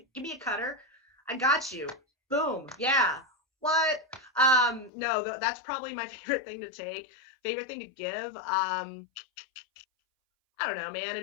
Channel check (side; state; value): right; drops out; at 4.9 s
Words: me a cutter. I got you. Boom. Yeah. What? No, that's probably my favorite thing to take. Favorite thing to give. I don't know, man. It'd